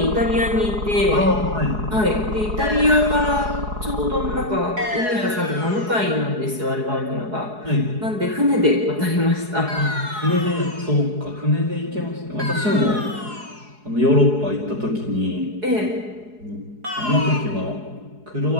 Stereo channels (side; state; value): left; late; 4.7 ms